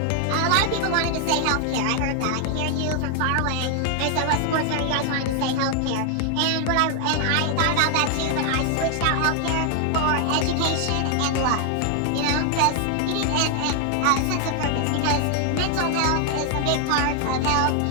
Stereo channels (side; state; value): both; different; correlation 0.00